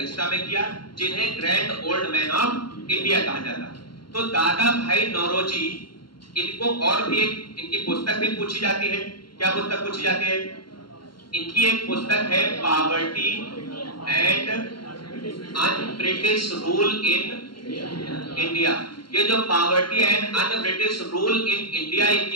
में किया, जिन्हें grand old man of India कहा जाता है। तो दादा भाई नौरोजी, इनको और भी एक इनकी पुस्तक भी पूछी जाती है। क्या पुस्तक पूछी जाती है? इनकी एक पुस्तक है poverty and un British rule in India. ये जो poverty and un British rule in India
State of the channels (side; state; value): right; late; 0.73 ms